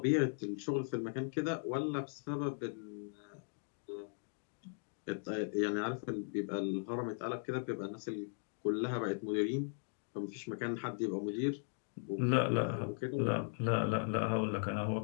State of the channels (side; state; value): right; silent; digital silence